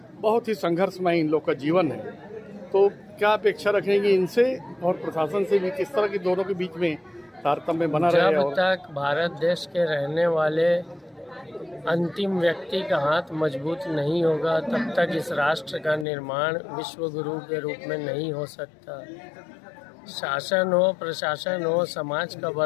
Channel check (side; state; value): right; drops out; at 16.1 s